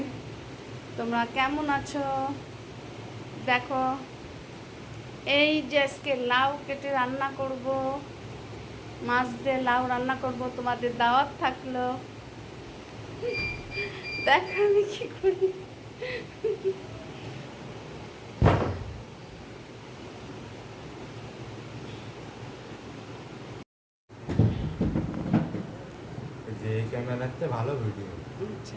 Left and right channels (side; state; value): both; identical; correlation 1.00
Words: তোমরা কেমন আছো? দেখো, এই যে আজকে লাউ কেটে রান্না করব, মাছ দিয়ে লাউ রান্না করব। তোমাদের দাওয়াত থাকলো। দেখো আমি কি করি। যে ক্যামেরাতে ভালো ভিডিও।